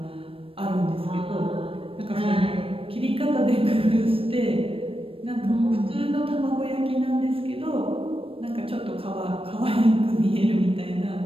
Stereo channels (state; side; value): late; left; 0.27 ms